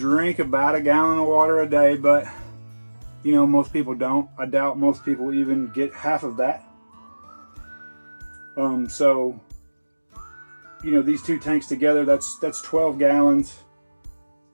about 1 gallon of water a day, but, you know, most people don't. I doubt most people even get half of that. So, you know, these 2 tanks together, that's 12 gallons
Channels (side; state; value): both; inverted; correlation -1.00